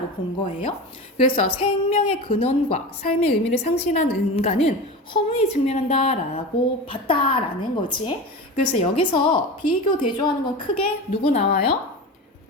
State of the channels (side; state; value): both; normal; correlation 0.28